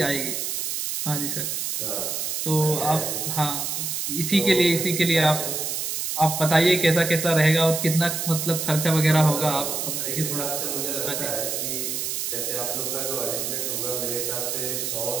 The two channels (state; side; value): noise; right; hiss, 2 dB below the sound